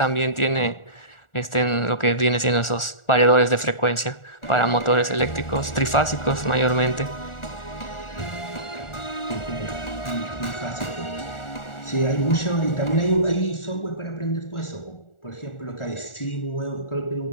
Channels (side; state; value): right; late; 1.4 ms